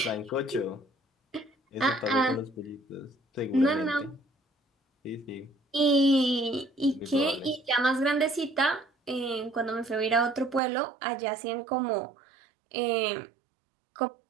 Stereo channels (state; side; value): drops out; left; at 10.6 s